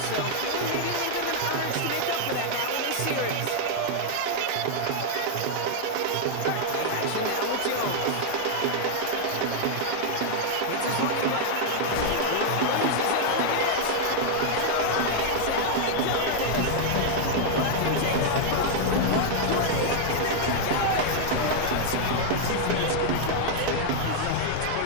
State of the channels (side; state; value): both; different; correlation 0.00